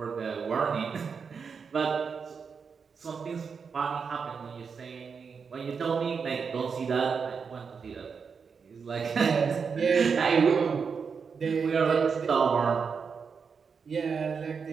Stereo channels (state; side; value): quieter; left; 5.8 dB